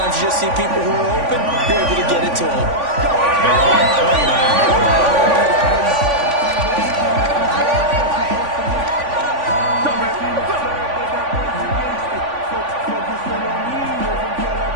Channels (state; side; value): late; left; 3.5 ms